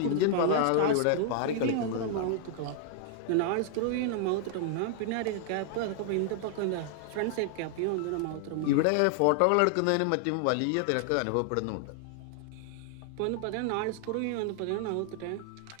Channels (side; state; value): both; different; correlation 0.00